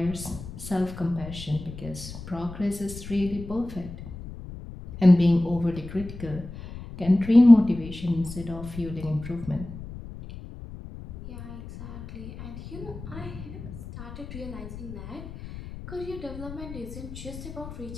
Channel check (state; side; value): noise; left; rumble, 12 dB below the sound